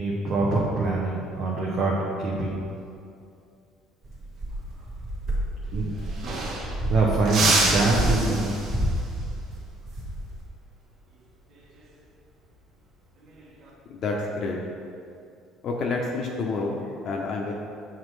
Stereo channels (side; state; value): both; normal; correlation 0.66